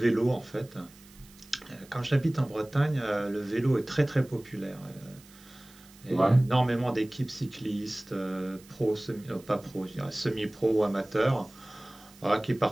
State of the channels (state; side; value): noise; right; hiss, 24 dB below the sound